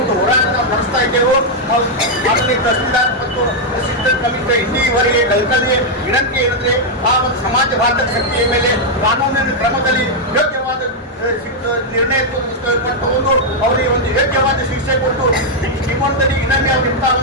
ಒಂದು ಹೋರಾಟ ನಡೆಸ್ತಾ ಇದ್ದೇವೆ. ಮಾನನೀಯ ತಹಸೀಲ್ದಾರ್ ಮತ್ತು ಅಸಿಸ್ಟೆಂಟ್ ಕಮಿಷನರ್ ಇಲ್ಲಿವರೆಗೆ ಕಲ್ಕಲಿಗೆ ವಿನಂತಿ ಏನಂದ್ರೆ ಆ ಒಂದು ಸಮಾಜಘಾತಕ ಶಕ್ತಿಯ ಮೇಲೆ ಕಾನೂನಿನ ಕ್ರಮದಲ್ಲಿ ಯೋಗ್ಯವಾದ ನಿರ್ಣಯ ತಗೊಂಡು ಅವರಿಗೆ ಒಂದು ಯೋಗ್ಯವಾದ ಶಿಕ್ಷೆ ಕೊಟ್ಟು ನಿಮ್ಮೊಂದಿಗೆ ಇನ್ನೊಮ್ಮೆ ಅವರಿಂದ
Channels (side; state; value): both; normal; correlation -0.02